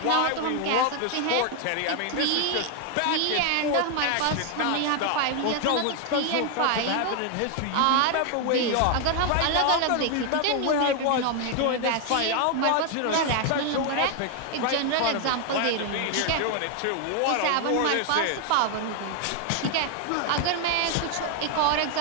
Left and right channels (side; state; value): both; different; correlation 0.00